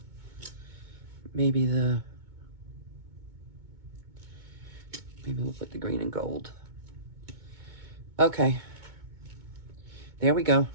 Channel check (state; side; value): late; left; 2.2 ms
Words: Maybe we'll put the green and gold. Okay. There we go.